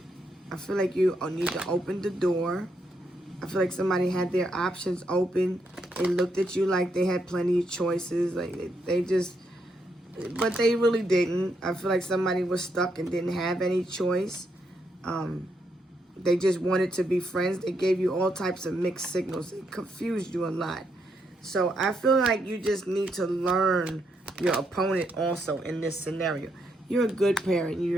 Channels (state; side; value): normal; both; correlation 0.78